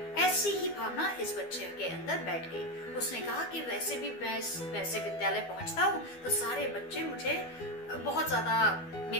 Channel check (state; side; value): late; right; 12 ms